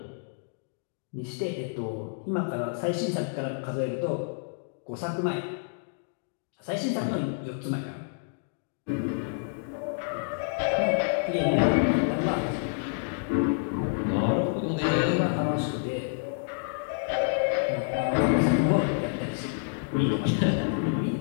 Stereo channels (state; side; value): silent; right; digital silence